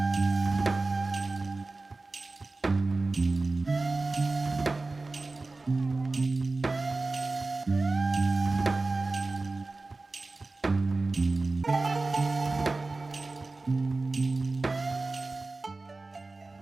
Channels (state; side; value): quieter; left; 3.4 dB